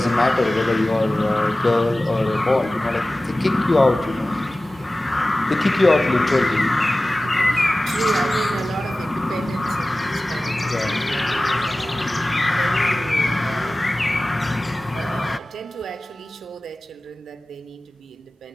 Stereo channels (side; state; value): both; normal; correlation 0.97